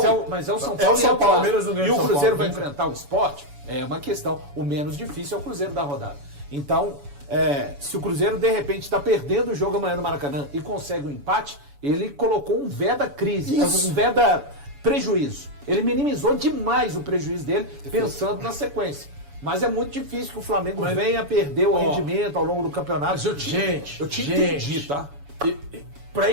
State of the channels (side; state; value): left; late; 7.0 ms